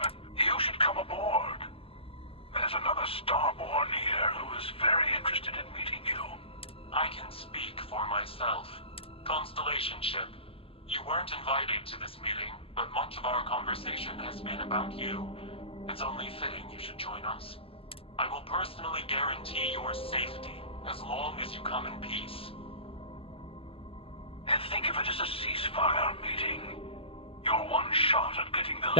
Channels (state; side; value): late; right; 0.27 ms